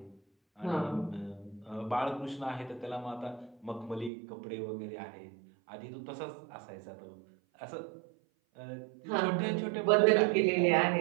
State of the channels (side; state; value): left; drops out; at 4.1 s